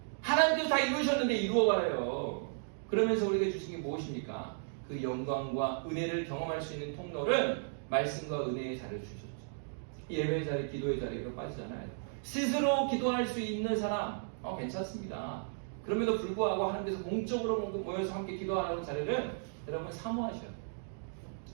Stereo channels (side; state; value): left; silent; digital silence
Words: 하나님께서 다 이루셨는데 이루어가래요. 그러면서 우리에게 주신 게 무엇입니까? 그 영광과 은혜를 경험할 수 있는 통로를 말씀과 은혜의 자리를 주셨죠. 예배의 자리, 기도의 자리로 빠지잖아요. 스스로 기도할 수 있는 사람 괜찮습니다. 그럼에도 불구하고 하나님께서 공적으로 모여서 함께 기도하라는 자리를 여러분 사모하셔야 돼요.